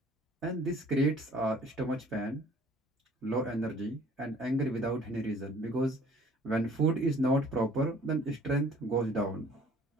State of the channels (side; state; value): both; normal; correlation 0.54